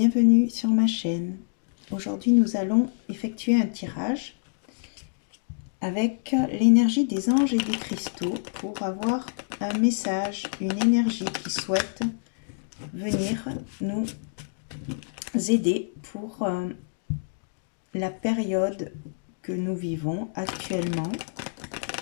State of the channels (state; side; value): silent; right; digital silence